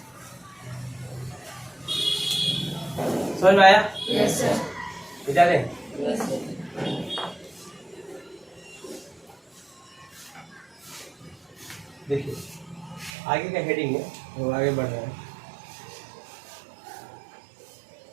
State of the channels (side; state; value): left; drops out; at 13.1 s